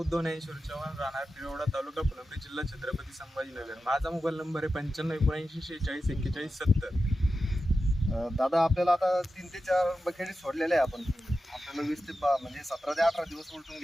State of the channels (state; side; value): normal; both; correlation 0.92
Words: ज्ञानेश्वर चव्हाण, राहणार पिरोडा, तालुका फुलंब्री, जिल्हा छत्रपती संभाजीनगर. माझा मोबाईल नंबर आहे 95794641. दादा आपल्याला आता 3 ते 4 बकेटी सोडलेल्या आहे आपण. आपल्याला 20 ते म्हणजे 17 ते 18 दिवस उलटून